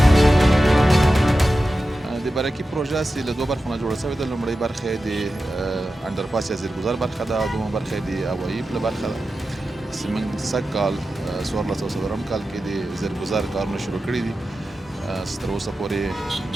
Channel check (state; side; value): normal; both; correlation 0.93